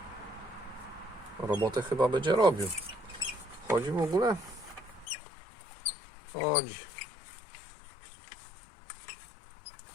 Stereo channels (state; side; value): drops out; right; at 5.1 s